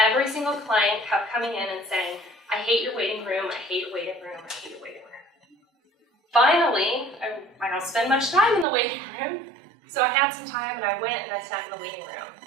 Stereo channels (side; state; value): left; drops out; at 8.7 s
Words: every single client kept coming in and saying, I hate your waiting room, I hate your waiting room, I hate your waiting room. Finally, I don't spend much time in the waiting room, so I had some time and I went and I sat in the waiting room.